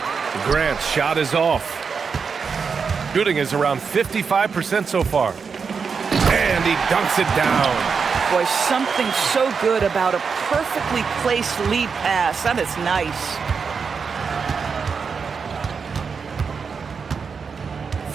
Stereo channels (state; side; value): quieter; left; 5.7 dB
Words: Grant's shot is off. Shooting is around 55% so far. And he dunks it down. Boy, something so good about a perfectly placed lead pass. That is nice.